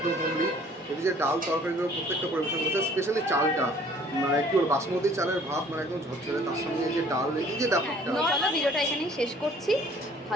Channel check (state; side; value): normal; both; correlation 0.55